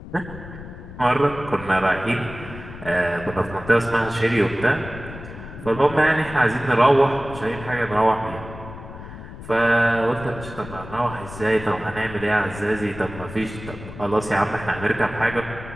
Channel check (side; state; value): left; noise; rumble, 13 dB below the sound